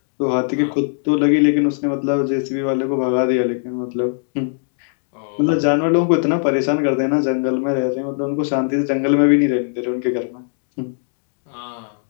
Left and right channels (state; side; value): silent; right; digital silence